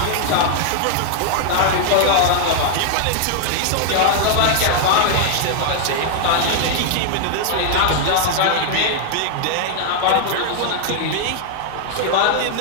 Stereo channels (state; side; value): different; both; correlation 0.00